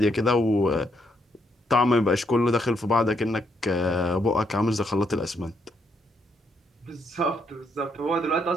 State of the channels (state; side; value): normal; both; correlation 0.76